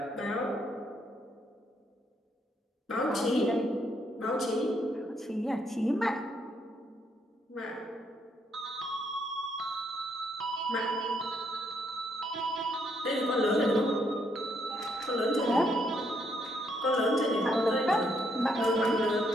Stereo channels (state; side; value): normal; both; correlation 0.73